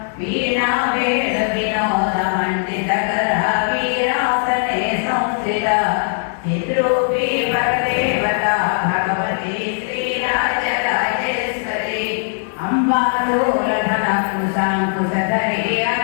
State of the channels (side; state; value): right; silent; digital silence